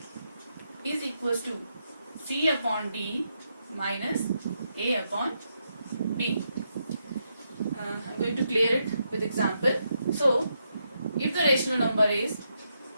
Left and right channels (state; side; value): inverted; both; correlation -0.81